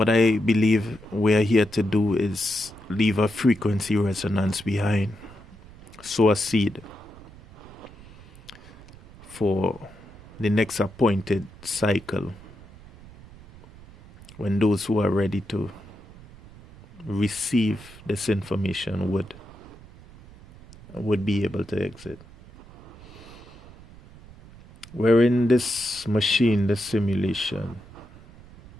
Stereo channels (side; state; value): right; noise; rumble, 20 dB below the sound